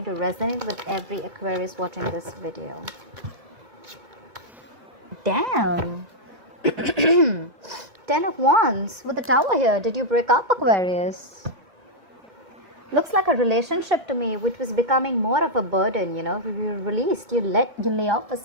to resonate with every Aquarius watching this video. Damn! 10 of Wands with the Tower here. Did you break up, Aquarius? Looks like a relationship to me, which was becoming more of a burden. You released, you lay off the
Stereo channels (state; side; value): late; left; 2.2 ms